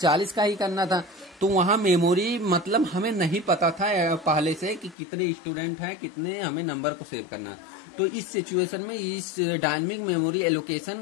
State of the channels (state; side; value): drops out; right; at 5.0 s